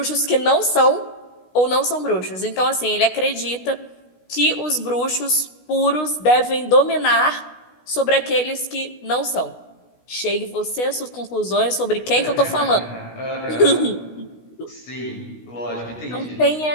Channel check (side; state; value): right; late; 16 ms